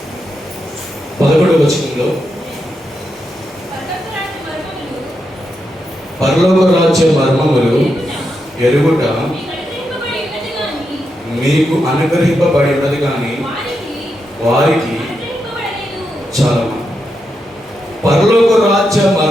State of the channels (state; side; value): normal; both; correlation 0.85